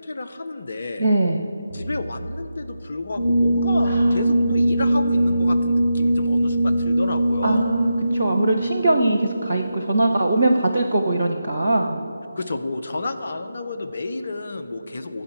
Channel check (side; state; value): both; inverted; correlation -0.88